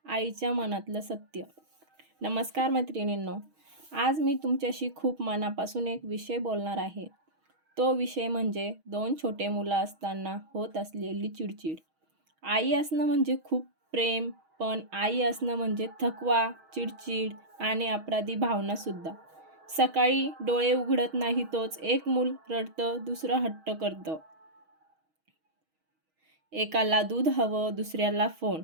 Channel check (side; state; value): left; late; 6.3 ms